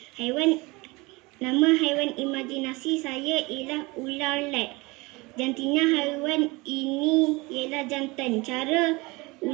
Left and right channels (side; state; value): left; quieter; 24.2 dB